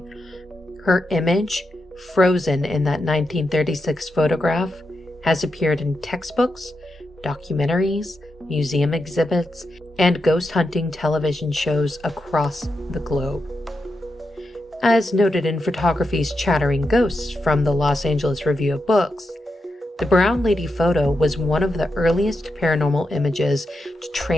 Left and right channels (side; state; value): both; normal; correlation 0.86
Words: Her image, frozen in that 1936 photograph, has appeared in textbooks, documentaries, museum exhibits, and ghost hunting television shows across the globe. As noted in photography's Chattering Ghosts from the Los Angeles Review of Books, the brown lady photo was one of the earliest paranormal images to